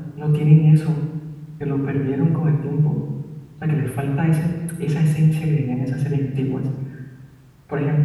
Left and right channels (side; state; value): both; identical; correlation 1.00